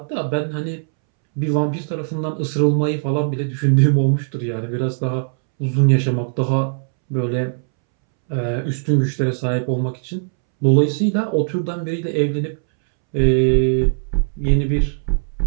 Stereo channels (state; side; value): silent; left; 66 dB below the other